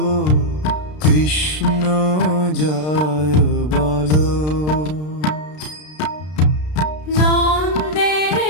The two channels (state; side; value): late; right; 33 ms